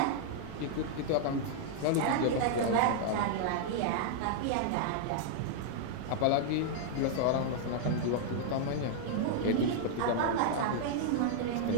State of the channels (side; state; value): both; different; correlation -0.01